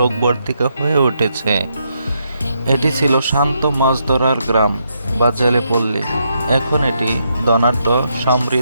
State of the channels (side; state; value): both; inverted; correlation -0.78